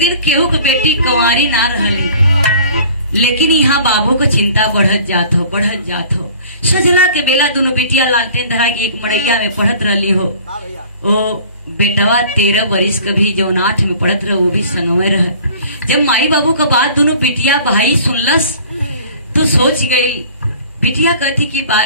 केहू के बेटी कुंवारी ना रहली, लेकिन यहाँ बाबू को चिंता बढ़त जात हो। सजला के बेला दोनों बेटिया लालटेन धरा के एक मड़ैया में पढ़त रही हो। ओ बेटवा 13 वर्ष कभी जौन 8 में पढ़त रह, वो भी संगवे रह। जब माई बाबू का बात दोनों बेटिया भाई सुनलस तो सोच गई। बिटिया कहती कि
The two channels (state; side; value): inverted; both; correlation -0.48